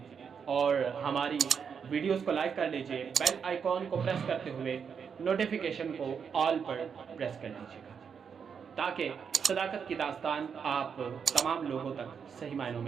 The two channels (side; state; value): left; quieter; 6.7 dB